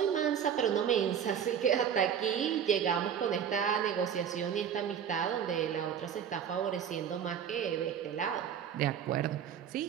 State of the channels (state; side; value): quieter; left; 8.4 dB